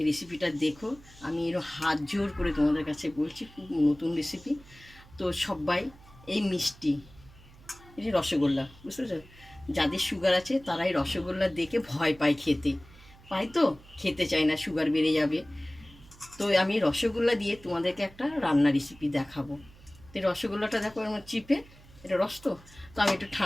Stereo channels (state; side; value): noise; right; hum, 23 dB below the sound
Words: রেসিপিটা দেখো। আমি এর হাত জোর করে তোমাদের কাছে বলছি, খুব নতুন রেসিপি। তো সবাই এই মিষ্টি, এই যে রসগোল্লা, বুঝতে পেরেছো? যাদের সুগার আছে তারাই রসগোল্লা দেখে ভয় পায়, খেতে চায় না, সুগার বেড়ে যাবে। তো আমি রসগোল্লা দিয়ে তোমাদেরকে একটা রান্না রেসিপি দেখাবো। তো রসগোল্লাটা দেখো আমার চিপে, এটা রস তো আমি একটু